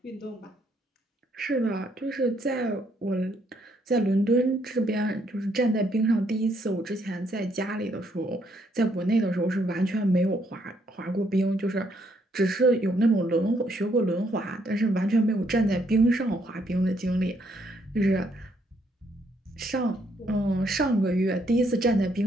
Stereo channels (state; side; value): normal; both; correlation 0.72